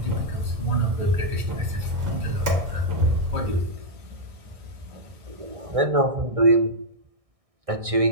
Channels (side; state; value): left; late; 1.6 ms